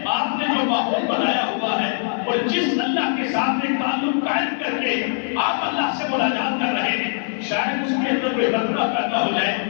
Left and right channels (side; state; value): right; silent; 64 dB below the other